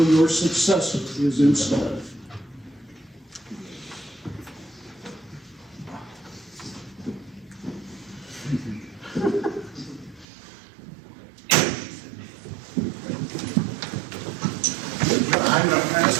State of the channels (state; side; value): drops out; left; at 10.2 s